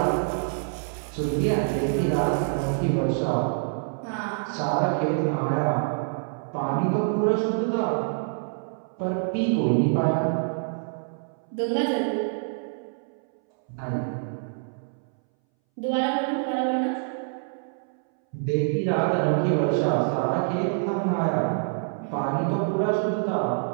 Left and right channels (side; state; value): left; silent; 61 dB below the other